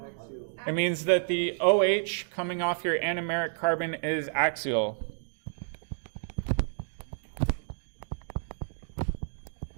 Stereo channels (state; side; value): silent; left; digital silence